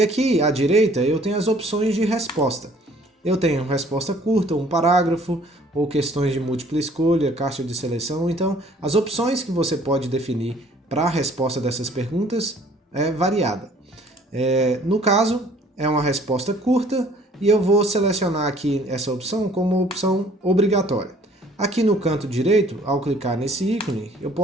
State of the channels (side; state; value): both; normal; correlation 0.56